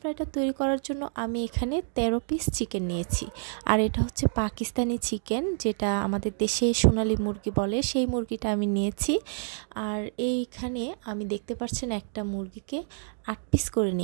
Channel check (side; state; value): left; silent; digital silence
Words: তৈরি করার জন্য আমি এখানে 13 পিস চিকেন নিয়েছি। আর এটা হচ্ছে পাকিস্তানি চিকেন, যেটা আমাদের দেশে সোনালী মুরগি বলে, সেই মুরগিটা আমি নিয়েছি। আর এইখানে আমি দেখতে পাচ্ছেন একটা মুরগিকে 8 পিস করে